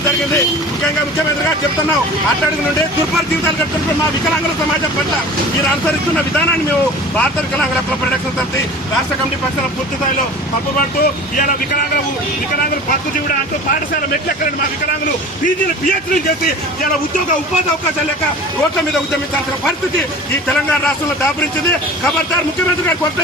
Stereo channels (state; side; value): normal; both; correlation 0.40